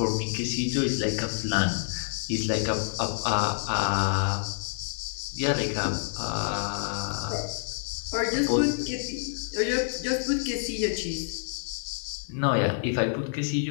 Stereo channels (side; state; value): right; silent; 59 dB below the other